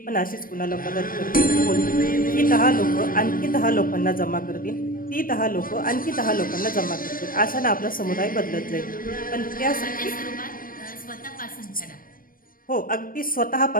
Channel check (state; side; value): late; right; 0.41 ms